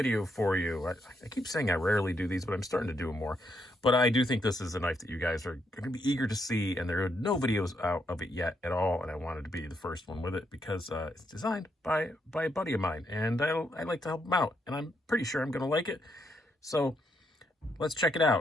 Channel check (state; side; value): normal; both; correlation 0.77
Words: for you. I keep saying I rarely do these, but I'm starting to do them more. But I do think this is a knife that you guys are going to be eager to see, and there are no videos out of it yet at all, and I wanted to be the first one with it because it's designed by a buddy of mine, and I like to help him out, and I'm pretty sure I'm going to like it. So let's check it